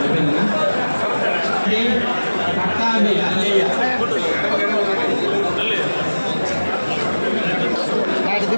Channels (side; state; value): both; inverted; correlation -1.00